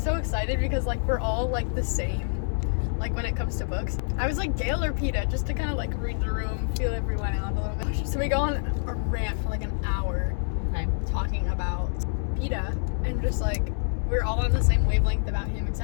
excited because like we're all like the same, like when it comes to books. I was like Gail or Peta just to kind of like read the room, feel everyone out a little bit. So we go on a rant for like an hour, talking about Peta, and just like we're all on the same wavelength about him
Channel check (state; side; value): silent; right; digital silence